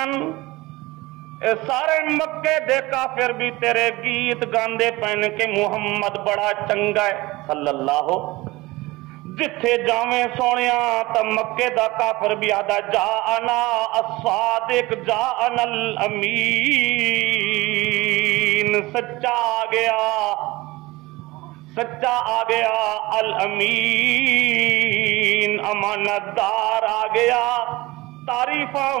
اے سارے مکے دے کافر بھی تیرے گیت گاندے پہن کے محمد بڑا چنگا ہے صلی اللہ، جتھے جاویں سونیا تا مکے دا کافر بھی آدھا جاءنا الصادق جاءنا الامین، سچا آ گیا، سچا آ گیا، الامین امانت دار آ گیا۔ تعریفاں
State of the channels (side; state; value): left; quieter; 20.7 dB